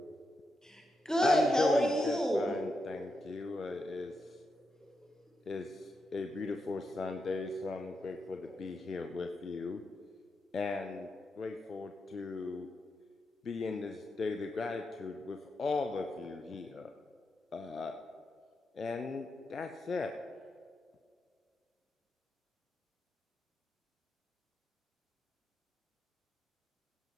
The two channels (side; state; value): both; normal; correlation 0.85